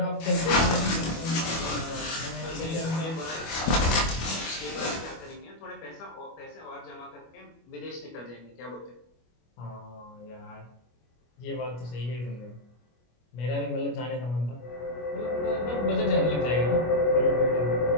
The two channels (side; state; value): right; late; 25 ms